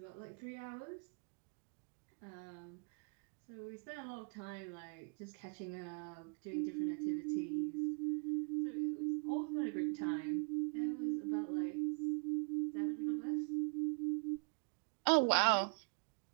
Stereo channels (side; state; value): left; quieter; 35.7 dB